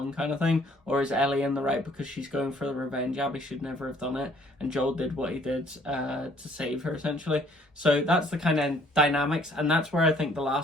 kind of thing? Or is Ellie in the right because she's going for the revenge? Abby should never have done it, and Joel did what he did to save her, essentially. So that's the kind of dynamics, and that's where I think The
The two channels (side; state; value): both; normal; correlation 0.60